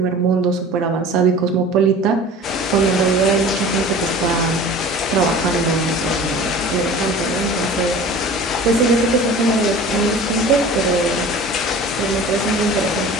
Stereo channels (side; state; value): both; normal; correlation 0.41